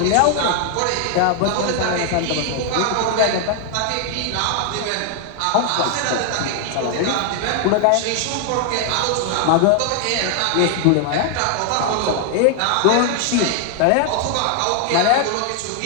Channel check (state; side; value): different; both; correlation 0.00